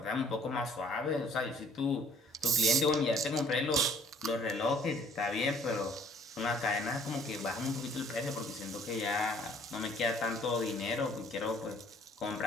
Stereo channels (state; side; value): normal; both; correlation 0.58